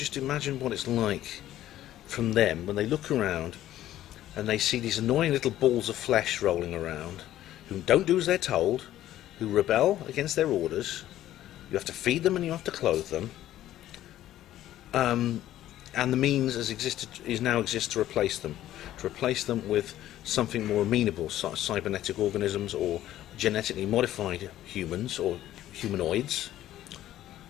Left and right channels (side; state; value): right; quieter; 13.2 dB